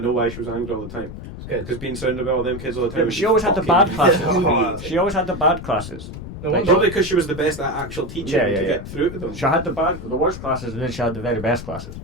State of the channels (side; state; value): left; noise; rumble, 11 dB below the sound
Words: why she was angry all the time. It's good. Because being surrounded by all them kids all the time. Yeah, but would she be always had the fucking bad classes. infuriating. She always had the bad classes. No Like, wonder. Probably because she was the best at actual teaching Yeah, yeah, to yeah. get through to them. She had the worst classes, and then she had the very best classes.